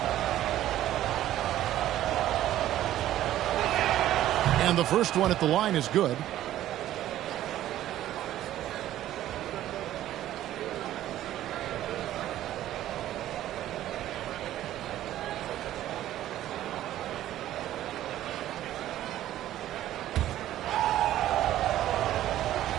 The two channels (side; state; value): left; quieter; 13.2 dB